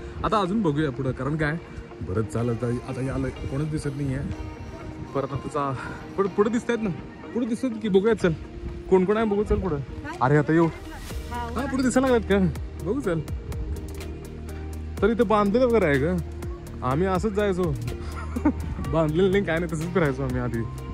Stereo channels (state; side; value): identical; both; correlation 1.00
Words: आता अजून बघूया पुढं, कारण काय बरंच चालत आता याला कोणच दिसत नाही आहे. परत आता पुढे दिसत आहेत ना, पुढे दिसत की बघूया. चल कोण कोण आहे बघू. चल पुढं. अरे आता येऊ हा पुढे दिसायला लागत का बघू. चल तर इथं बांधलेलं वगैरे आहे का? आम्ही असंच जायचो. बांधलेलं नाही काय नाही, तसंच फिरायचो आम्ही आधी